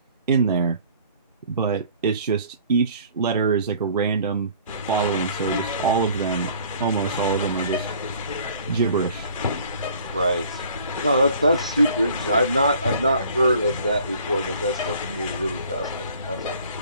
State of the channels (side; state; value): both; inverted; correlation -0.53